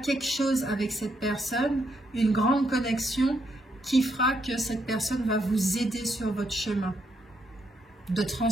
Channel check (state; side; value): normal; both; correlation 0.77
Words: chose avec cette personne, une grande connexion qui fera que cette personne va vous aider sur votre chemin de